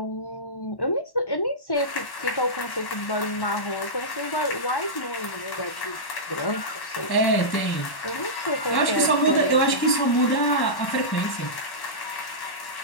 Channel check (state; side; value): late; right; 1.1 ms